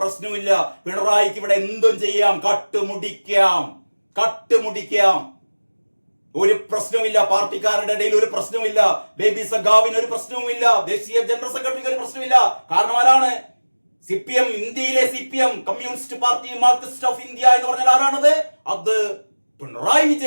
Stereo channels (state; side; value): inverted; both; correlation -1.00